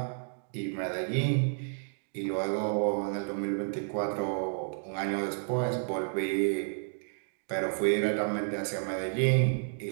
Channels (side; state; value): left; silent; digital silence